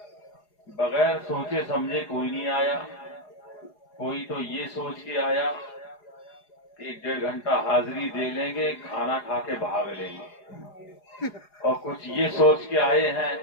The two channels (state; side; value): late; right; 4.8 ms